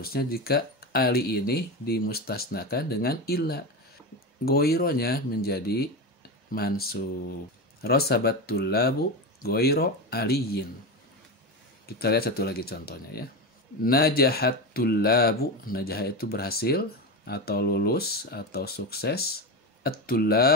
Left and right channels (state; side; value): normal; both; correlation 0.18